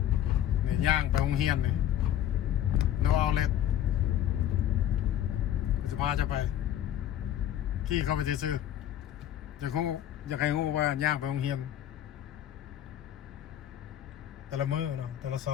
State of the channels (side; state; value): right; quieter; 11.4 dB